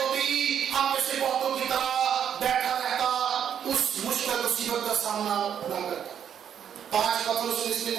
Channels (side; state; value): left; quieter; 8.8 dB